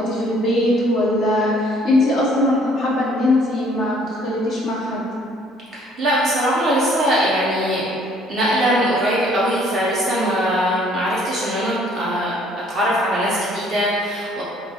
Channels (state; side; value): normal; both; correlation 0.60